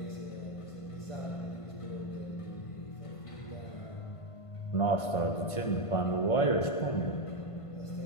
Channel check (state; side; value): late; right; 1.5 ms